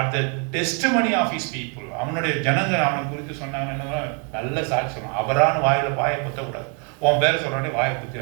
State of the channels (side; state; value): left; quieter; 37.9 dB